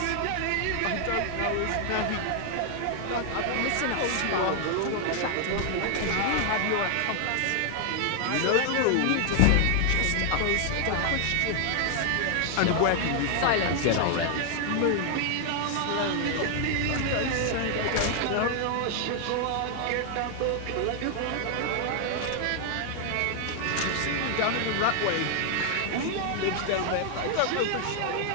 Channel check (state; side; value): different; both; correlation 0.00